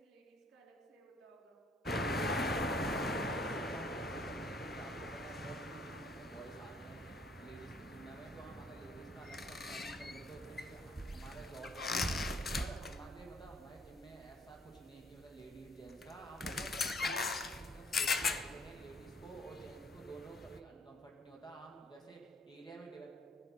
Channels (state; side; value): normal; both; correlation 0.62